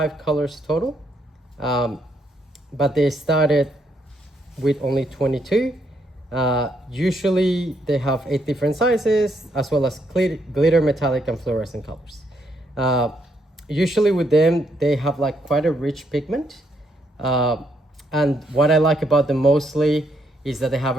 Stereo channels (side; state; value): both; normal; correlation 0.75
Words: colors total, but they started with only 22. Usually they have 8 different sizes, as well as glitter, metallic, and fluorescent colors. Usually with them, they have like quite a rich pigment. And what I like about them mostly is that they have